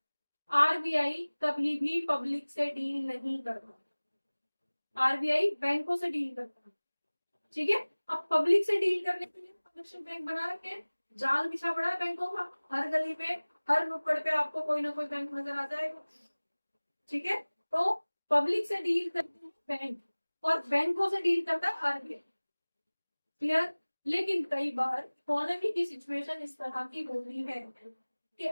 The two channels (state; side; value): inverted; both; correlation -1.00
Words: आरबीआई कभी भी पब्लिक से डील नहीं करता, आरबीआई बैंकों से डील करता है, ठीक है। अब पब्लिक से डील करने के लिए कमर्शियल बैंक बना रखे हैं, जाल बिछा पड़ा है बैंकों का, हर गली में हर नुक्कड़ पे आपको कोई ना कोई बैंक नजर आ जाएगा, ठीक है। तो पब्लिक से डील करते हैं बैंक और बैंकों से डील करता है आरबीआई, क्लियर। लेकिन कई बार इकोनॉमी की सिचुएशन इस तरह की होती है कि